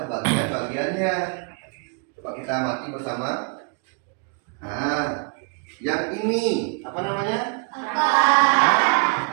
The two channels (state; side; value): quieter; left; 38.7 dB